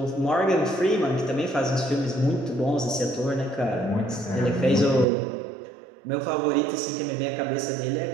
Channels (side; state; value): left; drops out; at 5.1 s